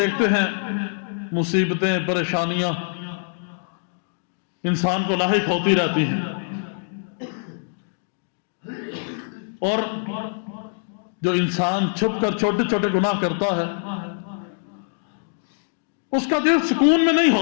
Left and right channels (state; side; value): silent; right; digital silence